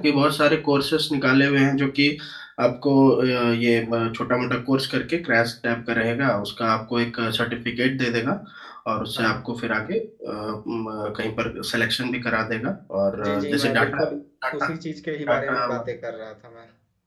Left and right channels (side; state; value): both; identical; correlation 1.00